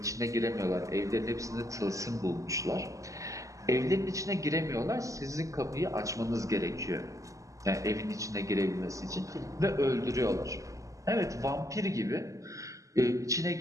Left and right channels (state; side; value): late; left; 0.16 ms